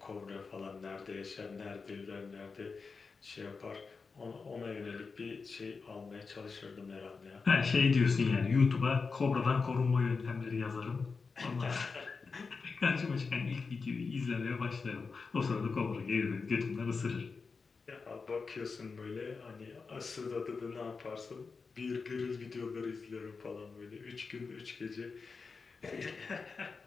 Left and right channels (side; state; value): right; quieter; 4.7 dB